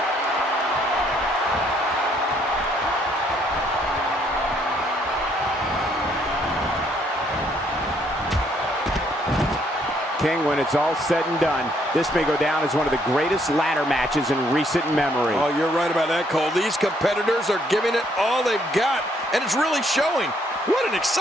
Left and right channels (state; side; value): normal; both; correlation 0.68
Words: King, when it's all said and done, this may go down as one of the greatest ladder matches in recent memory. Oh, you're right about that, Cole. These competitors are giving it all they've got, and it's really showing. What an